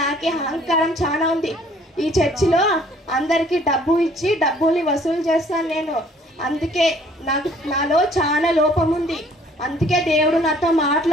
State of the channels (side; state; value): both; normal; correlation 0.58